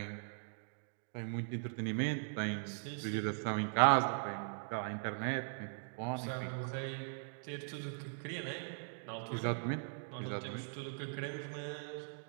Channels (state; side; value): silent; left; digital silence